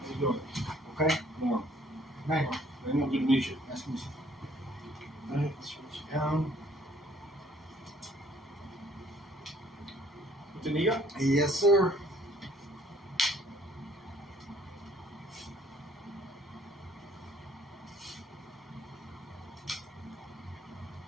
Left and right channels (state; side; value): normal; both; correlation 0.60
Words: you doing? Okay. Warm. Hey. Good to meet you. Nice to meet you. All right, let's switch you down. What did you got? Yes, sir.